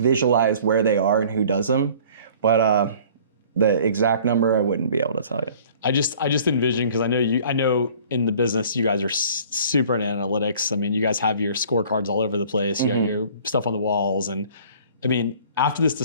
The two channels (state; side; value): inverted; both; correlation -0.51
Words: where they are and who does them. But the exact number, I wouldn't be able to tell you. I just envision, because I know in the business you guys are super in analytics. I mean, you guys have your scorecards all over the place. You have your stuff on the walls, and I mean, after this